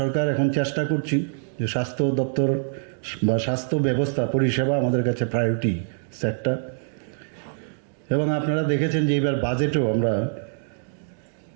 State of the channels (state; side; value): silent; left; digital silence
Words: এখন চেষ্টা করছি যে স্বাস্থ্য দপ্তর বা স্বাস্থ্য ব্যবস্থা পরিষেবা আমাদের কাছে প্রায়োরিটি সেক্টর। এবং আপনারা দেখেছেন যে এবার বাজেটেও আমরা